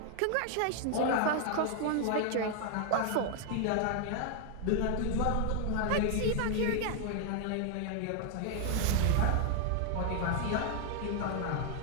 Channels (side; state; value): both; different; correlation 0.00